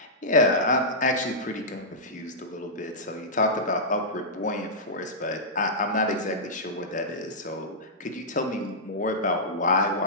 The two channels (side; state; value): both; normal; correlation -0.13